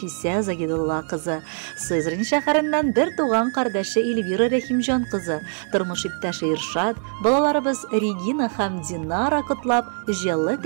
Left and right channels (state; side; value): silent; left; 61 dB below the other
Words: Загидулла кызы, Сызрань шәһәреннән бер туган кардәше Эльвира Рәхимҗан кызы, тормыш иптәше Иршат, балаларыбыз Регина һәм Динара котлап, җылы